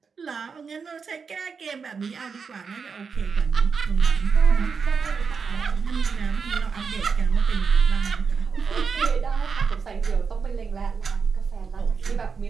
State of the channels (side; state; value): left; quieter; 5.6 dB